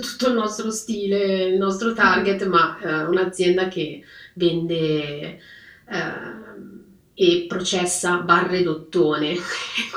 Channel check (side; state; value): both; identical; correlation 1.00